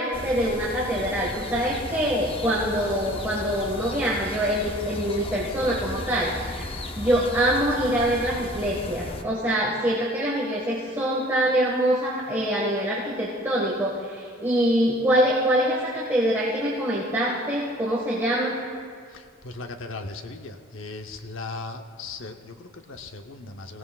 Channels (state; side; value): normal; both; correlation 0.50